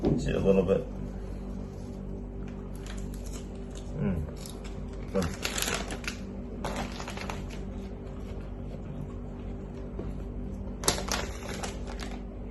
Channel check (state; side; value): identical; both; correlation 1.00